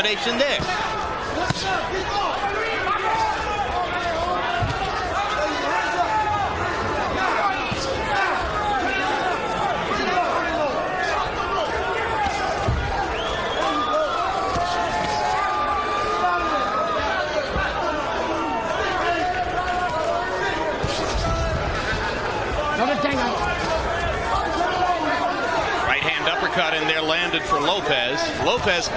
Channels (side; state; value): both; identical; correlation 1.00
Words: there. Right hand uppercut in there landed for Lopez. Lopez,